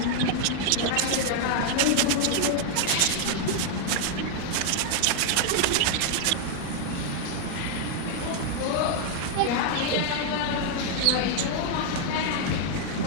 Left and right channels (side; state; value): both; different; correlation 0.00